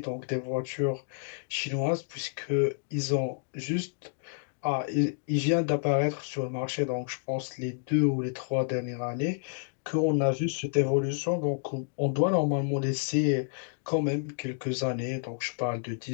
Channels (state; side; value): silent; right; digital silence